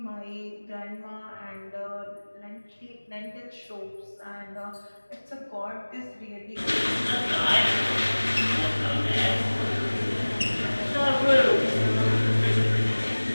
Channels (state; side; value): inverted; both; correlation -1.00